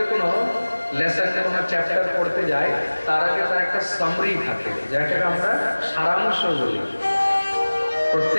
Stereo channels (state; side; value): inverted; both; correlation -1.00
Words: কোনো লেসন, কোনো চ্যাপ্টার পড়তে যাই, তার আগে তার একটা সামারি থাকে, যেটাকে আমরা সারাংশ বলি।